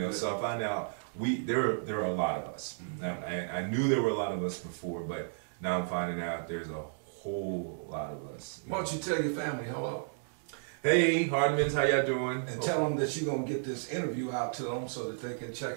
So I find out there are a lot of us. Now, I knew there were a lot of us before, but now I'm finding out there's a whole lot of us. Why don't you tell your family hello? Hey, Hardmans, how y'all doing? And tell them that you're going to get this interview out to them so that they can check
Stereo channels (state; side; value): silent; left; digital silence